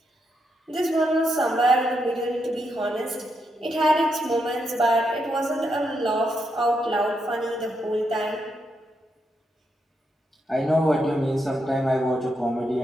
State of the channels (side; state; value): both; normal; correlation 0.81